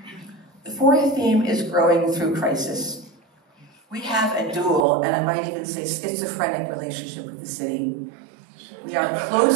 The fourth theme is growing through crisis. We have a dual, and I might even say schizophrenic relationship with the city. We are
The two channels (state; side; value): drops out; left; at 4.9 s